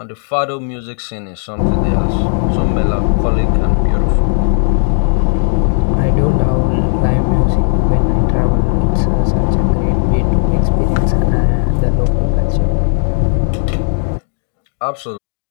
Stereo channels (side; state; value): right; silent; digital silence